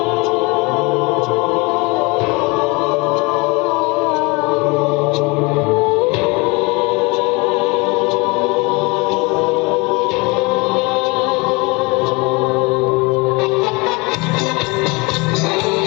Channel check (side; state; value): right; quieter; 27.0 dB